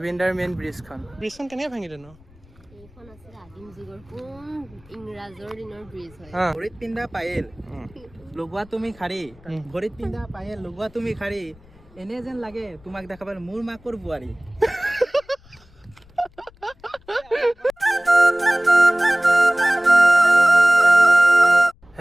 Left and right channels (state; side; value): noise; left; rumble, 27 dB below the sound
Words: মেইন ব্ৰিজখন। ব্ৰিজখন কেনেকৈ ভাঙিলে ন? এইখন আছিল আদিম যুগৰ কোন ইংৰাজৰ দিনৰ ব্ৰিজ হয়। ভৰিত পিন্ধা পায়েল লগোৱা তুমি খাৰী, ভৰিত পিন্ধা পায়েল লগোৱা তুমি খাৰী, এনে যেন লাগে তোমাক দেখাবাৰ মোৰ মাকৰ বোৱাৰী।